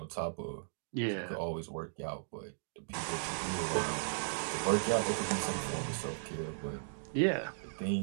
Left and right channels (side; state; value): left; silent; digital silence